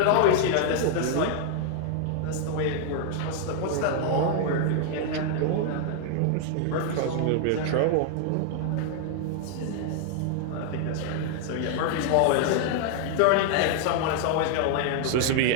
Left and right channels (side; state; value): both; different; correlation 0.00